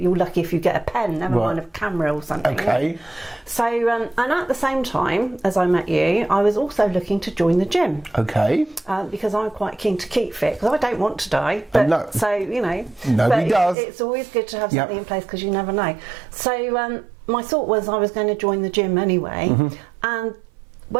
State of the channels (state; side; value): drops out; left; at 13.8 s